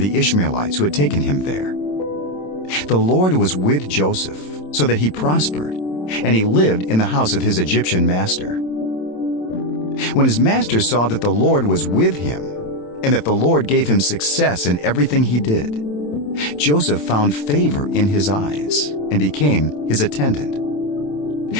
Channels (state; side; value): late; right; 27 ms